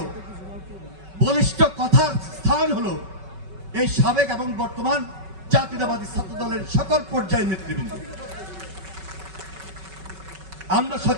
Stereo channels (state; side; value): late; left; 5.3 ms